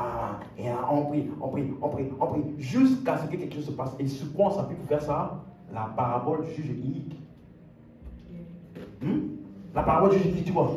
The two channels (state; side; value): identical; both; correlation 1.00